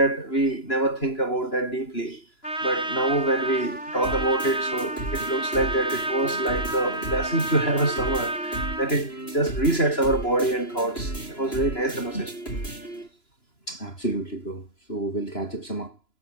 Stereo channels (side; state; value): right; late; 3.0 ms